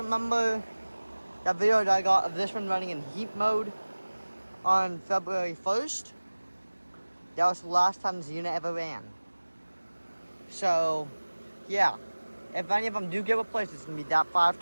that video that I got of this one running in heat mode on February 1st, that was the last time this unit ever ran. So, yeah, if any of them do get replaced, it's going to be that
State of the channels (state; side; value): inverted; both; correlation -1.00